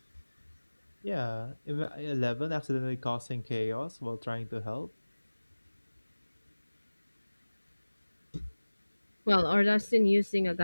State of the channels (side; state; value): both; inverted; correlation -1.00